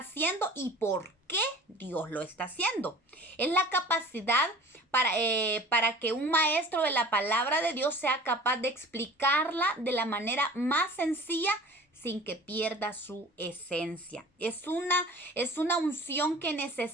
y por qué Dios lo está haciendo. Es la capacidad para que un maestro de la palabra de Dios sea capaz de explicarla de la manera más sencilla sin que pierda su esencia. Es una unción que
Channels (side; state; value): both; normal; correlation 0.43